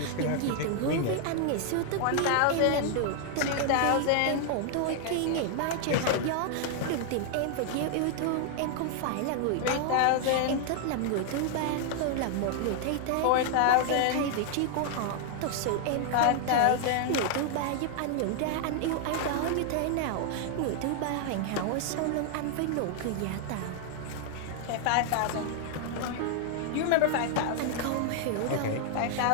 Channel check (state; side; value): different; both; correlation 0.00